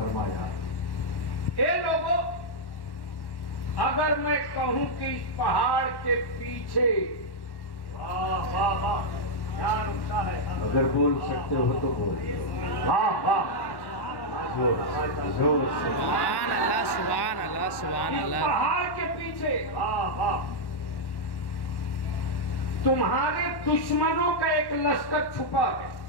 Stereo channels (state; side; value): late; right; 1.1 ms